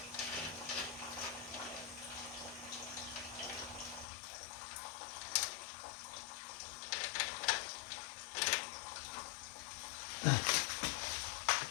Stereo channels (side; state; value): right; drops out; at 4.0 s